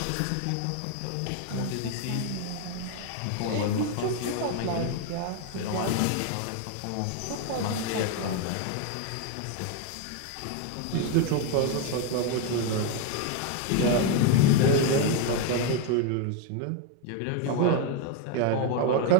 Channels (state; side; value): different; both; correlation 0.01